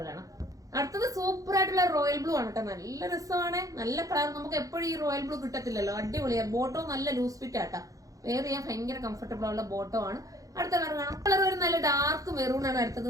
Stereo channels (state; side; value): late; left; 0.17 ms